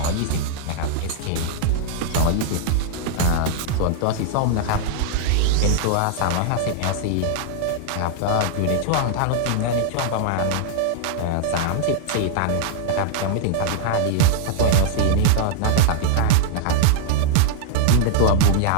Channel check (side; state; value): both; different; correlation 0.00